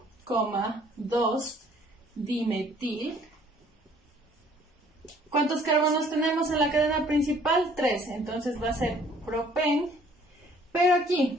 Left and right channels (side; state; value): both; normal; correlation 0.58